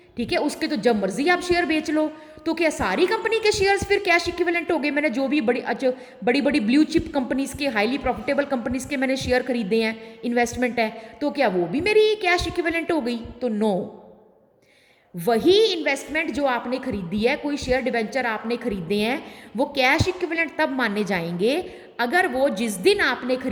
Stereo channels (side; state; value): both; identical; correlation 1.00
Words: ठीक है, उसके तो जब मर्जी आप शेयर बेच लो, तो क्या सारी कंपनी के शेयर्स फिर कैश इक्विवेलेंट हो गए? मैंने जो भी बड़ी बड़ी ब्लू चिप कंपनीज के, हाईली प्रॉफिटेबल कंपनीज के मैंने शेयर खरीदे हैं, इन्वेस्टमेंट है, तो क्या वो भी मेरी कैश इक्विवेलेंट हो गई? तो नो। वही इन्वेस्टमेंट जो आपने खरीदी है, कोई शेयर डिबेंचर आपने खरीदे हैं, वो कैश इक्विवेलेंट तब माने जाएंगे अगर वो जिस दिन आपने